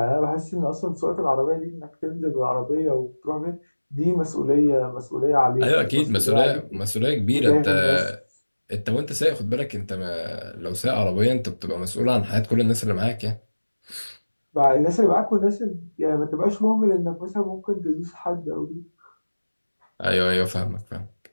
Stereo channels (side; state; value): both; inverted; correlation -1.00